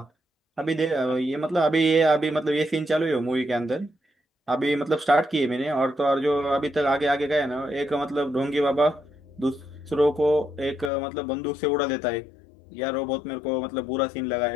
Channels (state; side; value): drops out; right; at 10.9 s